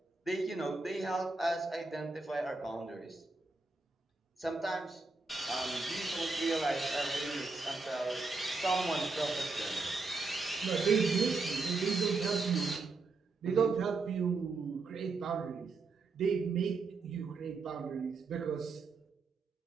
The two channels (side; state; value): left; quieter; 3.9 dB